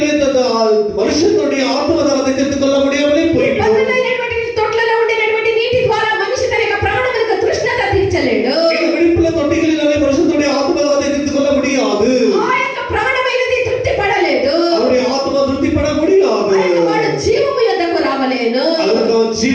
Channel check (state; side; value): identical; both; correlation 1.00